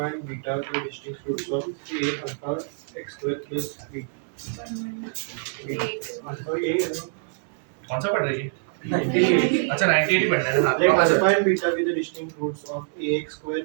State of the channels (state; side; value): silent; left; digital silence